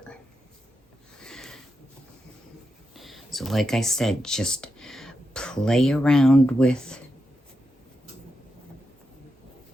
So like I said, just play around with.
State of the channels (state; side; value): normal; both; correlation 0.87